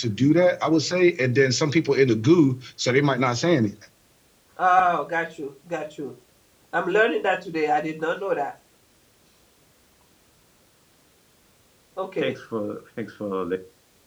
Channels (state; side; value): identical; both; correlation 1.00